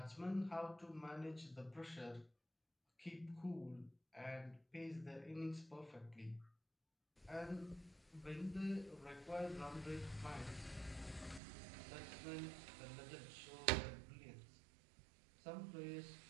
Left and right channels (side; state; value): left; drops out; at 11.4 s